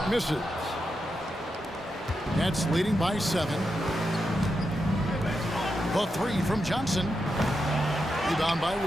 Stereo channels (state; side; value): normal; both; correlation 0.86